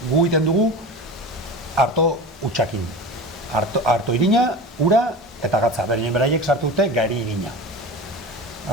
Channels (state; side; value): normal; both; correlation 0.31